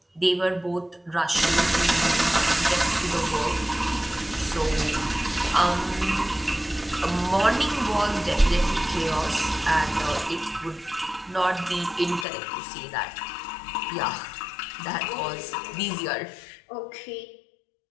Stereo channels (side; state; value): right; drops out; at 12.2 s